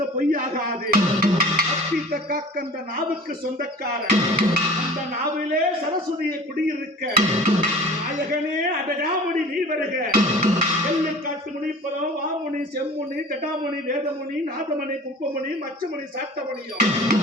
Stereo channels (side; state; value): both; normal; correlation 0.43